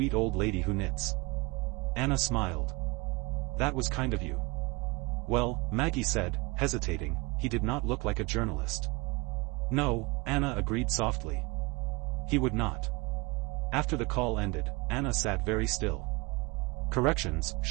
old lady who knits." Anna smiled. "That was kind of you." "Well," Maggie said, hesitating, "he did not look like a journalist." "No," Anna agreed softly. "He would not." After the call ended, Anna sat very still. Corrections,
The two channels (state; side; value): quieter; left; 25.9 dB